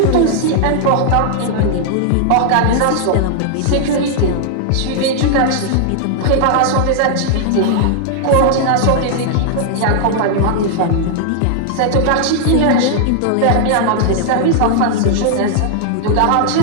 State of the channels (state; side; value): different; both; correlation -0.01